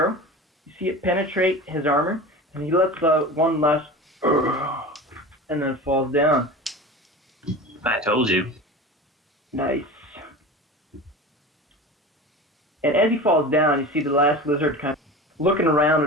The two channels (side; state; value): both; normal; correlation 0.32